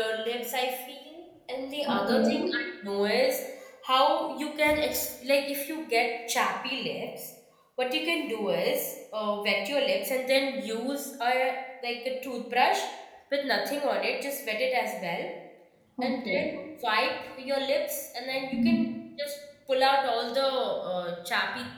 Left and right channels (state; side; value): identical; both; correlation 1.00